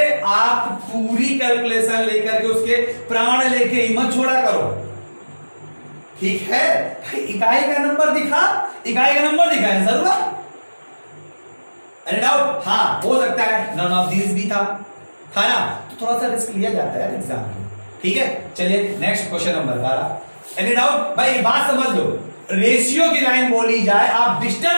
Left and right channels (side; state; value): both; inverted; correlation -1.00